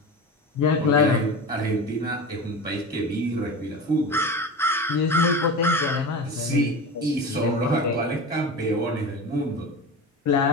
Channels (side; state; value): both; normal; correlation 0.28